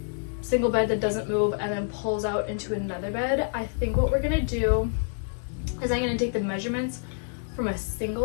single bed that doesn't move and then pulls out into another bed, I think what we're gonna do is I'm gonna take the measurements from a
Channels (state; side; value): silent; right; digital silence